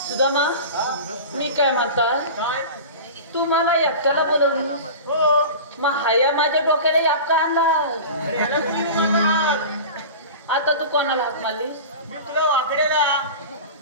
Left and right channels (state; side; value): inverted; both; correlation -0.32